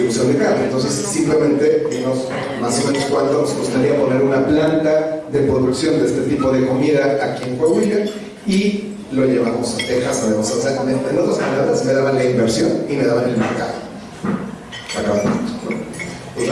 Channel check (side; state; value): both; identical; correlation 1.00